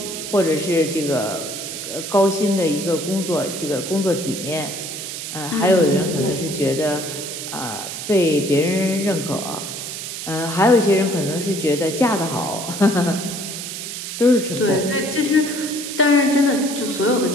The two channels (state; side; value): noise; right; hiss, 7 dB below the sound